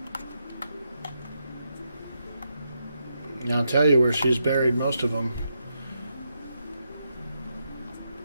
And I'll tell you where she's buried most of them.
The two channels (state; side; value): inverted; both; correlation -0.83